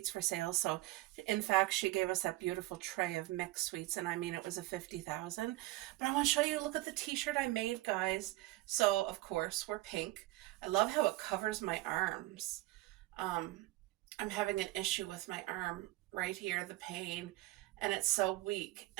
for sale. So in fact, she gave us that beautiful tray of mixed sweets, and I mean, it was a 50,000. But I want to show you, look at the t-shirt I made, guys. So of course we're pink. I love how it covers my arms. um I'm having an issue with my arm right here, the pain, and it's so weak,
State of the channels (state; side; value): quieter; left; 18.5 dB